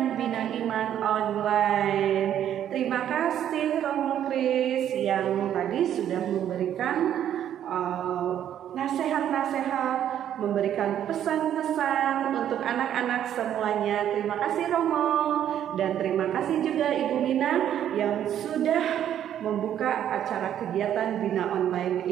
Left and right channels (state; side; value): quieter; left; 10.4 dB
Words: Bina Iman online. Terima kasih Romo Kris yang tadi sudah memberikan nasihat-nasihat, memberikan pesan-pesan untuk anak-anak semuanya. Terima kasih Romo, dan terima kasih juga Ibu Mina yang sudah membuka acara kegiatan Bina Online